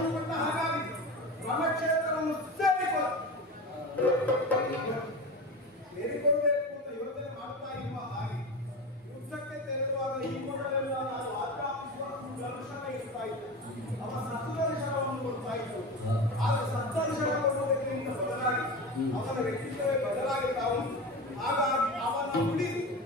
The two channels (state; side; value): normal; both; correlation 0.27